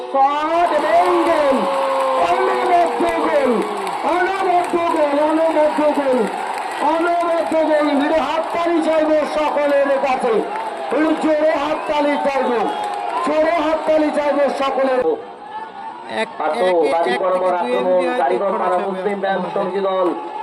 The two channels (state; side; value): identical; both; correlation 1.00